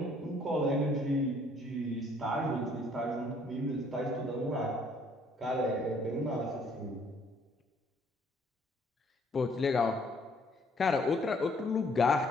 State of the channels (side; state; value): both; normal; correlation 0.63